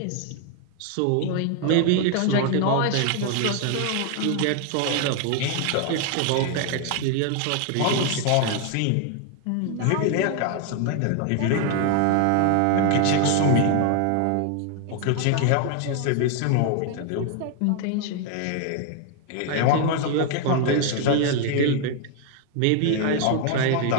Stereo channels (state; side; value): different; both; correlation 0.00